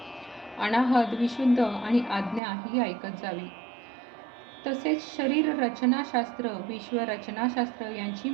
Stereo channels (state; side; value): drops out; left; at 2.4 s